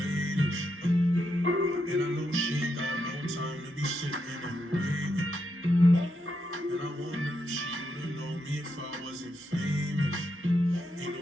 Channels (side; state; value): both; normal; correlation 0.82